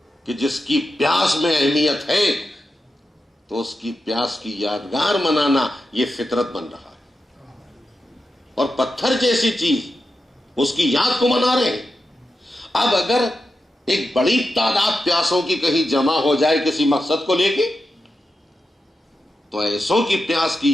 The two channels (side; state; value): both; normal; correlation 0.89